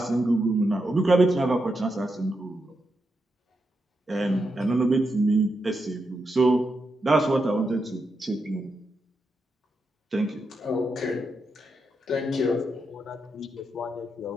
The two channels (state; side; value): normal; both; correlation 0.85